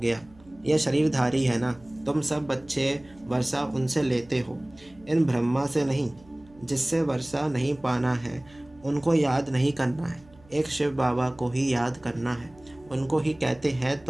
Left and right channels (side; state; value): right; noise; hum, 26 dB below the sound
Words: यह शरीरधारी है ना, तुम सब बच्चे वर्षा उनसे लेते हो, इन ब्रह्मा से नहीं। जिससे वर्षा नहीं पाना है उनको याद नहीं करना है, एक शिव बाबा को ही याद करना है। उनको ही कहते हैं